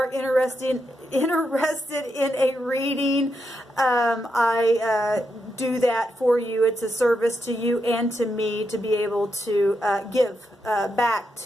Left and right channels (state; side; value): normal; both; correlation 0.83